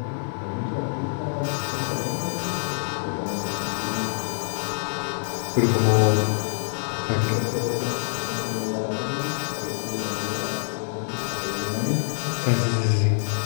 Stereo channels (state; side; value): silent; right; digital silence